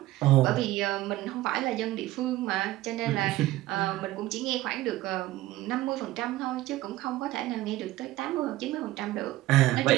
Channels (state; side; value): quieter; left; 16.5 dB